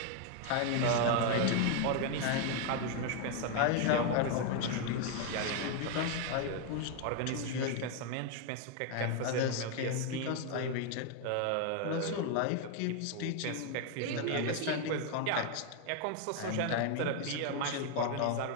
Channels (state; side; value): different; both; correlation 0.01